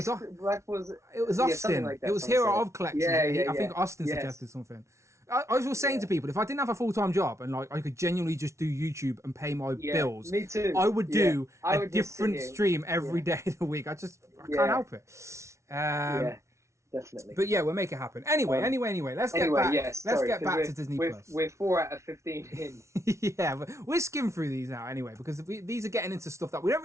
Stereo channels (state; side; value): late; left; 0.14 ms